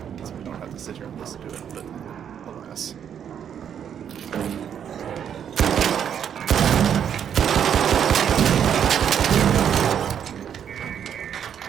so we don't have to sit here and listen to it, but alas.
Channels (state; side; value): quieter; left; 8.6 dB